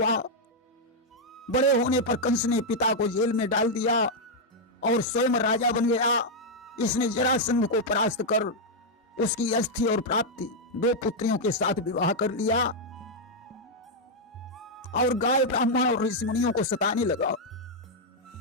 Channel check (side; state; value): both; normal; correlation -0.02